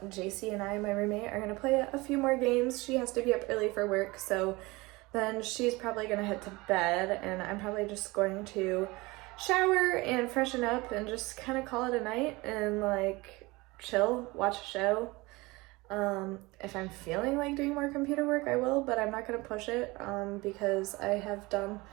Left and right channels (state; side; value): quieter; left; 22.8 dB